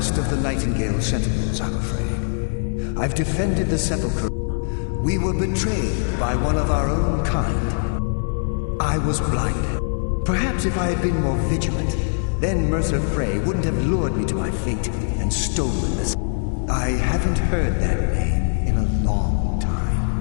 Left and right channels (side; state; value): right; silent; 61 dB below the other